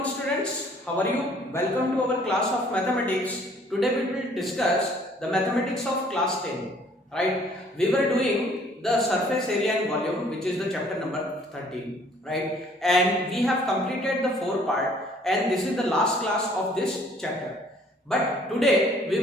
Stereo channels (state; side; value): normal; both; correlation 0.59